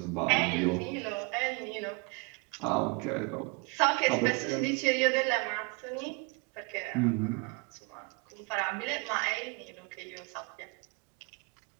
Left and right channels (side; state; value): left; quieter; 31.9 dB